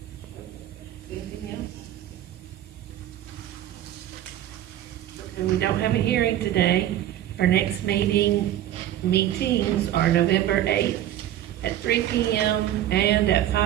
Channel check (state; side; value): quieter; left; 12.4 dB